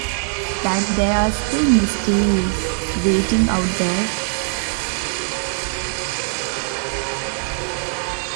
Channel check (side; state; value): left; silent; digital silence